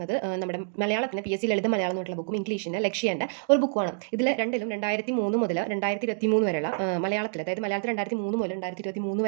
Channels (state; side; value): silent; left; digital silence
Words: നമ്മുടെ മലയാളത്തിന് PSC ലളിത മലയാളം എന്നുള്ള ബുക്കും ഇംഗ്ലീഷിന് ലക്ഷ്യേൻ്റെ ഒരു ബുക്കുമാണ്. ഇതിൽ രണ്ടിലും 2003 മുതൽ 2023 വരെയുള്ള മലയാളത്തിൽ, അതായത് മലയാളത്തിൽ 2003 മുതൽ 2023